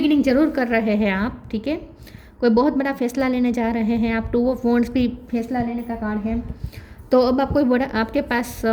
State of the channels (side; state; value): both; identical; correlation 1.00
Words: जरूर कर रहे हैं आप, ठीक है। कोई बहुत बड़ा फैसला लेने जा रहे हैं आप। टू ऑफ वॉन्ड्स भी फैसला लेने का कार्ड है। तो अब आप कोई बड़ा, आपके पास